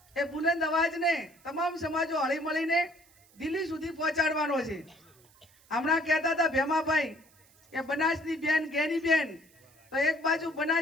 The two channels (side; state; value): right; noise; hiss, 29 dB below the sound